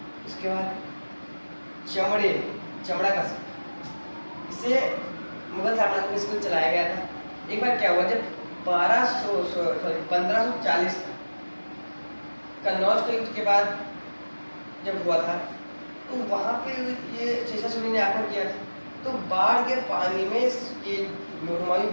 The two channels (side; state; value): both; inverted; correlation -1.00